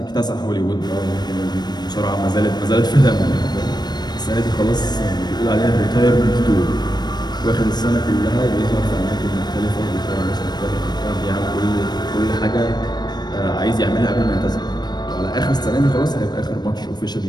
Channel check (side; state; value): right; late; 0.20 ms